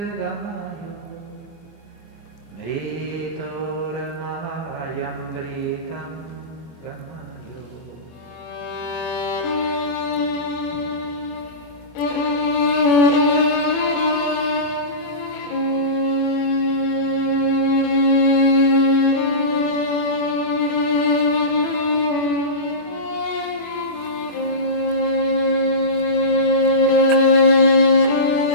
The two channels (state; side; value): late; right; 24 ms